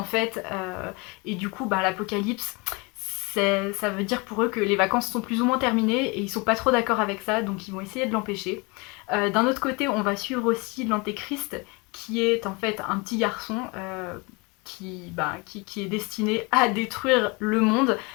fait, et du coup l'apocalypse, ça veut dire pour eux que les vacances sont plus ou moins terminées, et ils sont pas trop d'accord avec ça, donc ils vont essayer de l'empêcher. D'un autre côté, on va suivre aussi l'Antéchrist, qui est en fait un petit garçon qui est destiné à détruire le monde,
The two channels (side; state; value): right; quieter; 28.0 dB